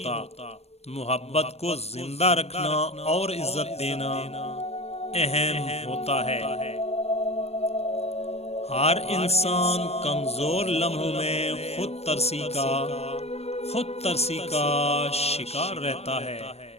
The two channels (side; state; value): right; late; 0.30 ms